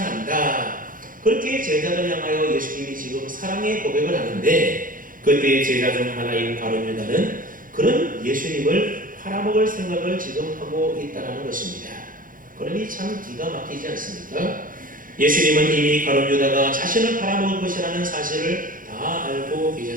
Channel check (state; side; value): late; left; 0.40 ms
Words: 그렇게 제자를 향하여 예수님이 지금 지금 사랑의 고백을 하는데, 그때 제자 중 하나인 가룟 유다는 그런 예수님을 팔아먹을 생각을 지금 하고 있다는 것입니다. 그러니 참 기가 막히지 않습니까? 예수님은 이미 가룟 유다가 자신을 팔아먹을 것이라는 사실을 다 알고